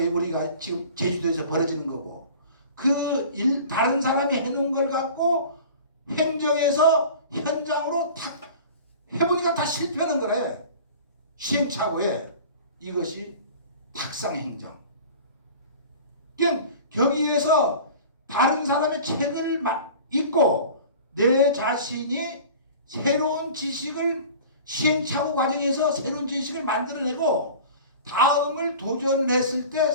지금 제주도에서 벌어지는 거고 다른 사람이 해놓은 걸 갖고 행정에서 현장으로 탁 해보니까 다 실패하는 거래. 시행착오에 이것이 탁상행정. 거기에서 다른 사람의 책을 읽고 내 자신이 새로운 지식을 시행착오 과정에서 새로운 지식을 만들어내고 다음을 도전했을 때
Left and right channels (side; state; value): both; inverted; correlation -0.41